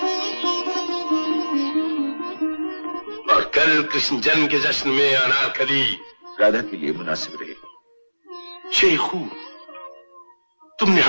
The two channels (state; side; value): inverted; both; correlation -1.00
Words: और कल कृष्ण जन्म के जश्न में अनारकली राधा के लिए मुनासिब रहे। शेखू, तुमने